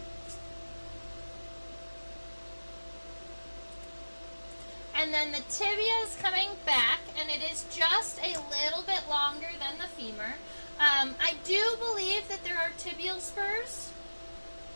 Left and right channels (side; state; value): both; inverted; correlation -1.00